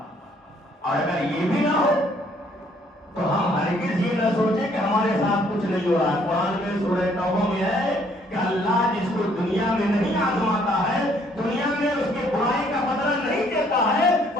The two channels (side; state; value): both; normal; correlation 0.64